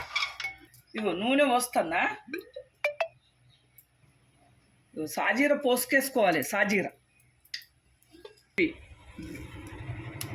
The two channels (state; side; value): identical; both; correlation 1.00